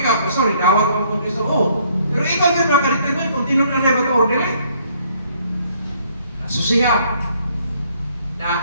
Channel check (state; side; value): inverted; both; correlation -0.65